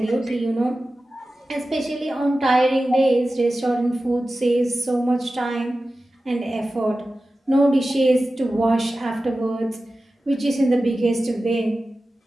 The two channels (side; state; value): both; normal; correlation 0.95